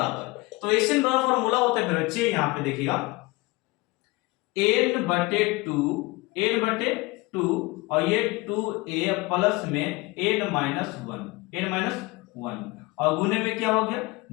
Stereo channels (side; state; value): right; quieter; 22.8 dB